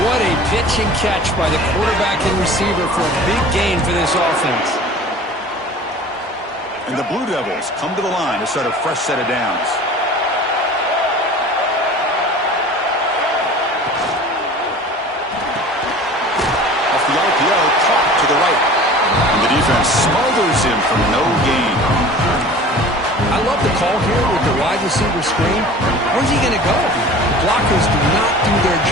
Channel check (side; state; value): both; normal; correlation 0.42